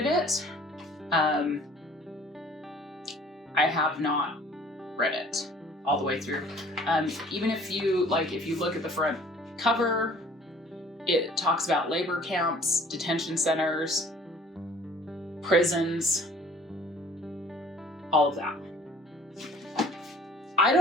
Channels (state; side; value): normal; both; correlation 0.52